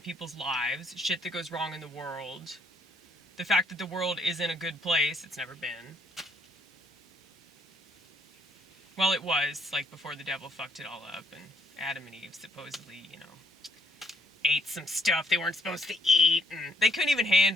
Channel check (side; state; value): both; normal; correlation 0.69